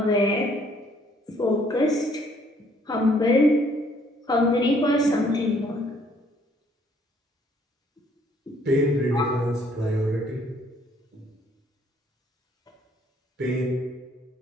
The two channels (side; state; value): both; normal; correlation 0.64